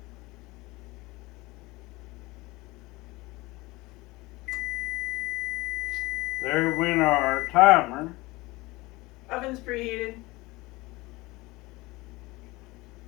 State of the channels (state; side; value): quieter; right; 21.6 dB